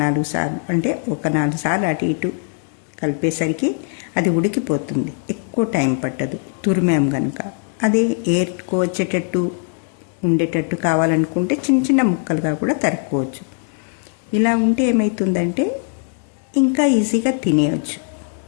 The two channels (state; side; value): silent; right; 55 dB below the other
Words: 4 సార్లు, అంటే ఒక 4 సార్లు అటు ఇటు కలిపేసరికి అది ఉడికిపోతుంది, ఎక్కువ టైం పట్టదు తురిమేం కనుక. అదే ఏర్చుకోవచ్చేటట్టు ఉండేటట్టు కావాలనుకుంటే చిన్న ముక్కలుగా కూడా తరుక్కోవచ్చు. ఇలా ఉంటే ఏమవుతుందంటే ఇంకా ఈజీగా తినేయచ్చు.